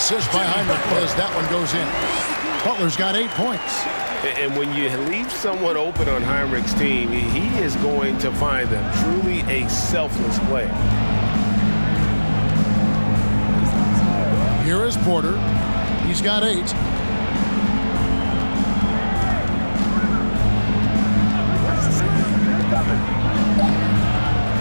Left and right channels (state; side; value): inverted; both; correlation -1.00